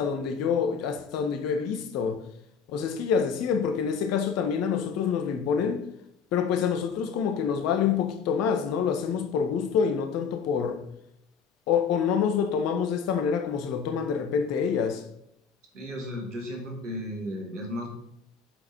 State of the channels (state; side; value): quieter; right; 6.4 dB